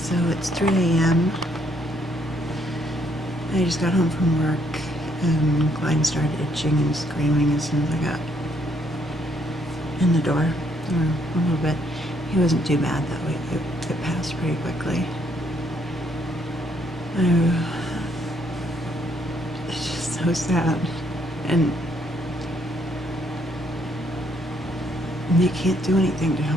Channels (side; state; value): both; normal; correlation 0.70